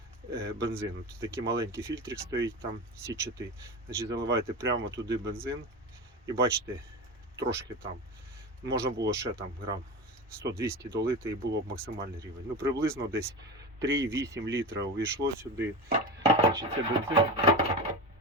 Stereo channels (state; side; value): normal; both; correlation 0.24